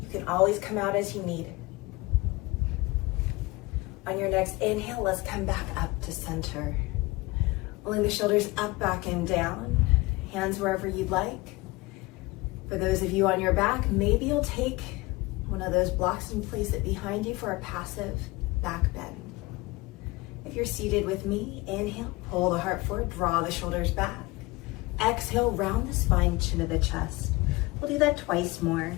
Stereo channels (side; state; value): right; quieter; 21.6 dB